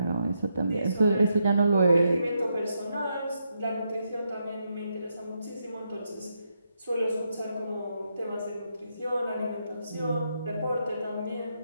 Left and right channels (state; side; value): inverted; both; correlation -0.81